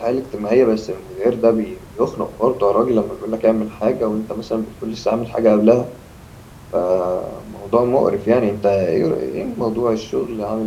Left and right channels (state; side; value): identical; both; correlation 1.00